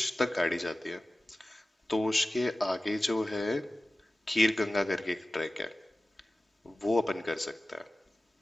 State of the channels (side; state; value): both; normal; correlation 0.96